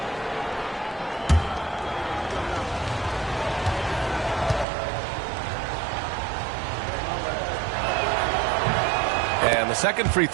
And the second free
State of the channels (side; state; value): left; drops out; at 4.7 s